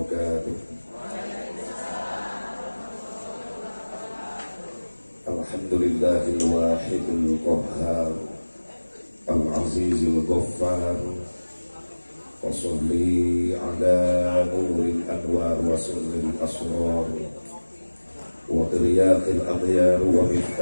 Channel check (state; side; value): inverted; both; correlation -1.00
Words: Alhamdulillahil wahidil qahhar, al-azizil ghaffar. Wa sholli ala nuril anwar wa sirril asrar wa iryaqil aghyar wa